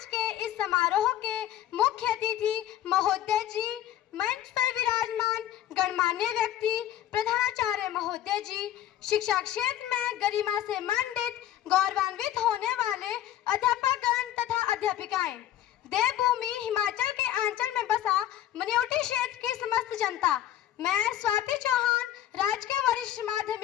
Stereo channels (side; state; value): right; quieter; 12.2 dB